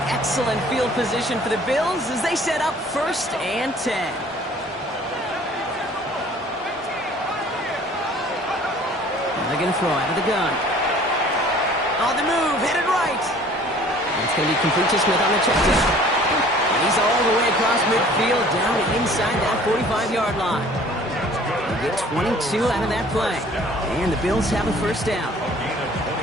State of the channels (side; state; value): both; normal; correlation 0.52